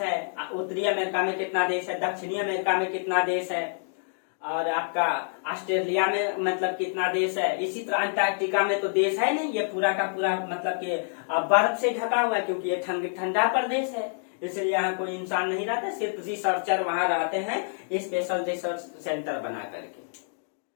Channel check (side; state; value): right; silent; digital silence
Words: उत्तरी अमेरिका में कितना देश है, दक्षिणी अमेरिका में कितना देश है, और आपका ऑस्ट्रेलिया में मतलब कितना देश है। इसी तरह अंटार्कटिका में तो देश है नहीं, ये पूरा का पूरा मतलब कि बर्फ से ढका हुआ है, क्योंकि ये ठंडा प्रदेश है, इसलिए यहाँ कोई इंसान नहीं रहता, सिर्फ रिसर्चर वहां रहते हैं स्पेशल रिसर्च सेंटर बना करके।